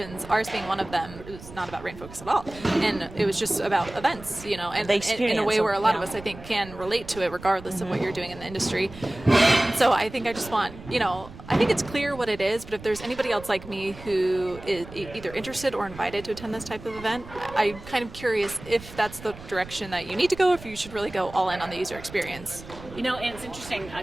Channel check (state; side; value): noise; right; rumble, 16 dB below the sound